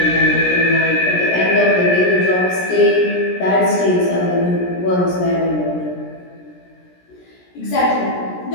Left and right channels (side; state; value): right; late; 17 ms